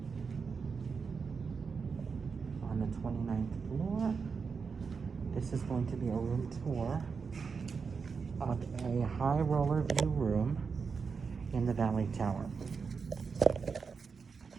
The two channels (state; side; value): quieter; left; 5.4 dB